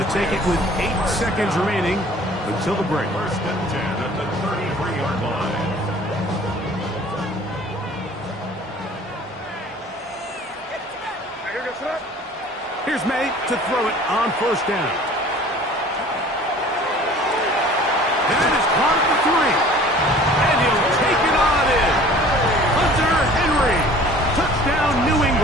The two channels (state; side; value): normal; both; correlation 0.48